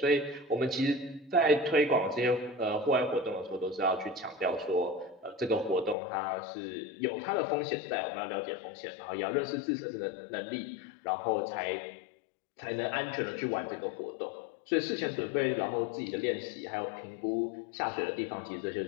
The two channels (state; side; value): drops out; right; at 6.0 s